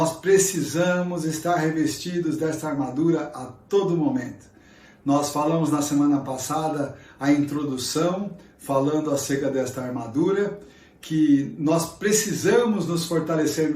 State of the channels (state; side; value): identical; both; correlation 1.00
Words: precisamos estar revestidos desta armadura a todo momento. Nós falamos na semana passada a introdução, falando acerca desta armadura, que nós precisamos nos fortalecer